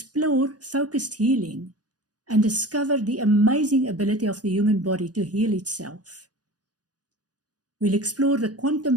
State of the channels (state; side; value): late; left; 0.68 ms